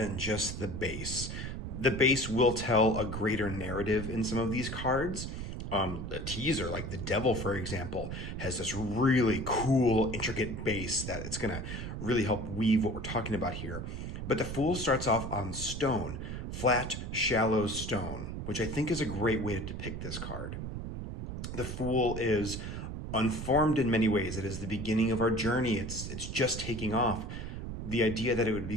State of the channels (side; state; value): right; noise; rumble, 6 dB below the sound